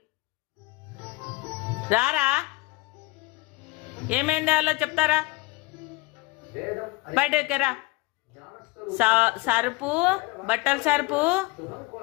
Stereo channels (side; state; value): right; quieter; 22.0 dB